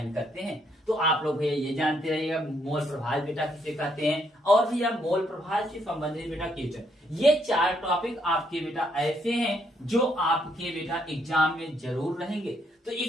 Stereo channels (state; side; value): normal; both; correlation 0.73